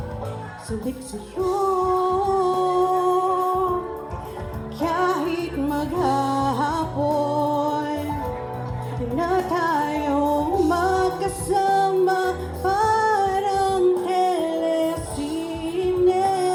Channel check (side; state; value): both; identical; correlation 1.00